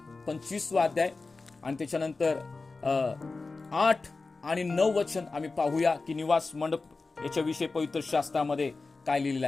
25वा अध्याय आणि त्याच्यानंतर 8 आणि 9 वचन आम्ही पाहूया की निवास मंडप याच्याविषयी पवित्र शास्त्रामध्ये काय लिहिलेलं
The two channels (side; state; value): right; quieter; 3.8 dB